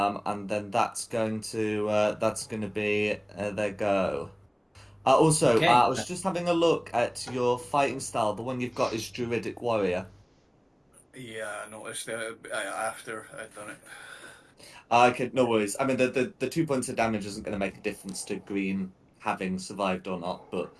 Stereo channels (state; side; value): identical; both; correlation 1.00